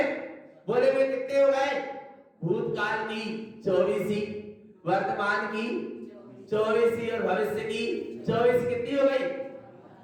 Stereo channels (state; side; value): identical; both; correlation 1.00